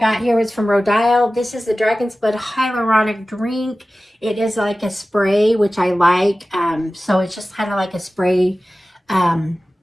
here was from Rodile. This is the Dragon's Blood Hyaluronic Drink. It is like a spray, which I like. So it's just kind of like a spray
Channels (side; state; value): both; normal; correlation 0.96